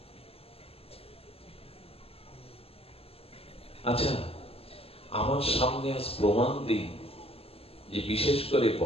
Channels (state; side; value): late; right; 0.28 ms